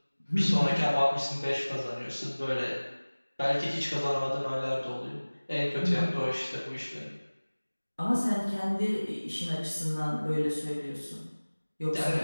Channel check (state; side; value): inverted; both; correlation -1.00